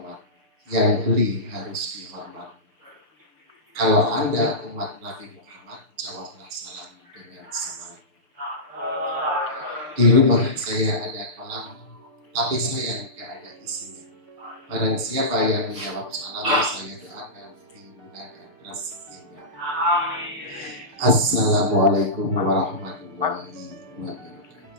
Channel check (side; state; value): left; late; 6.6 ms